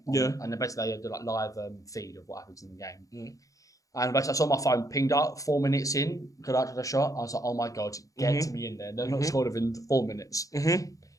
And then basically, they do like live feed of what happens in the game. And basically, I saw my phone pinged up 4 minutes in, could I a shot. I was like, oh my God, get to me in there. They're not scored within 4 minutes.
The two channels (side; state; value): right; late; 0.16 ms